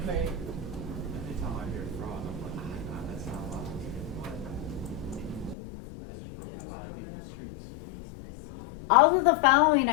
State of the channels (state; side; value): drops out; right; at 5.6 s